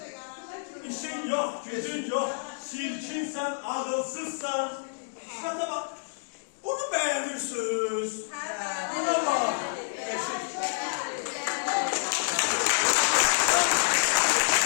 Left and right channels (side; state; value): right; silent; digital silence